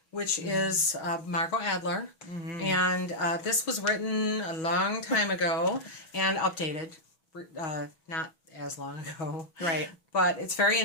which is Margot Adler. And this was written a long time ago and updated. Not as long ago. Right. But it's very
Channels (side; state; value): right; late; 6.3 ms